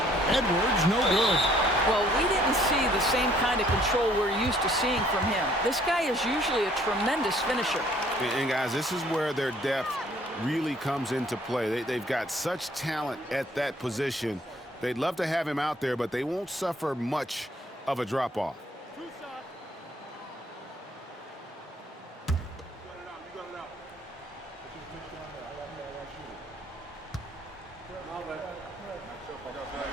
Edwards, no good. Well, we didn't see the same kind of control we're used to seeing from him. This guy is usually a tremendous finisher. And guys, this is where their depth really comes into play. They've got such talent at that position. They'd love to have him out there, but they won't suffer much of a drop-off.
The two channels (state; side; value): normal; both; correlation 0.61